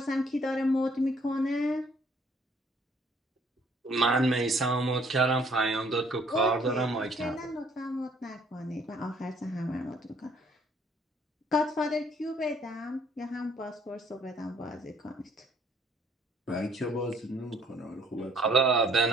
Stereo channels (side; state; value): both; normal; correlation 0.62